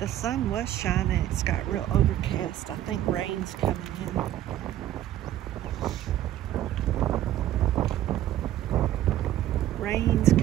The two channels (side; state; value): left; quieter; 12.7 dB